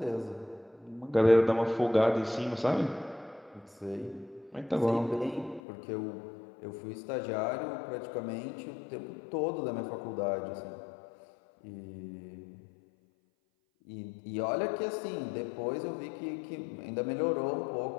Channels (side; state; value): right; drops out; at 5.6 s